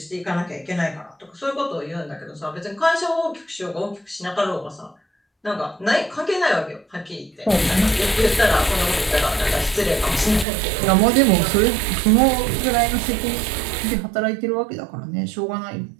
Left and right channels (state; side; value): drops out; left; at 10.5 s